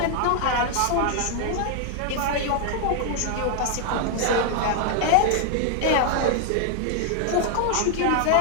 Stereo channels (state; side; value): different; both; correlation 0.00